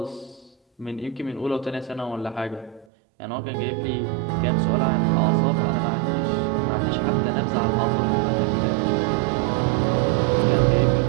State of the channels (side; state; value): left; drops out; at 2.9 s